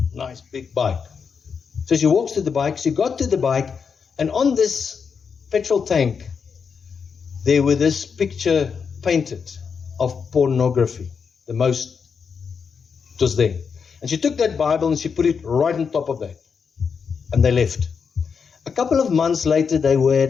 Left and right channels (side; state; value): right; quieter; 6.1 dB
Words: Nice big bike. So she walks to the bike, she got to the bike, and on this petrol tank, there were this picture painted of pornography. It was there. And she took that Bible and she put it right on top of that. And they left. A couple of months later, they were